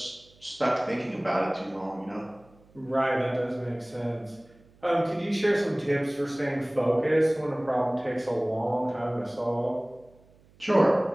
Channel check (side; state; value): right; noise; hum, 29 dB below the sound